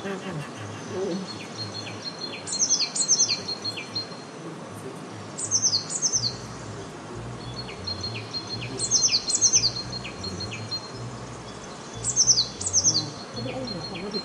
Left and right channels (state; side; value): identical; both; correlation 1.00